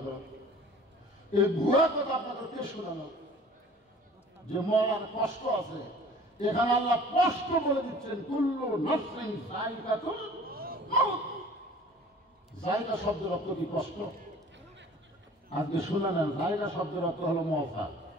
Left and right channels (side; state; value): both; normal; correlation 0.47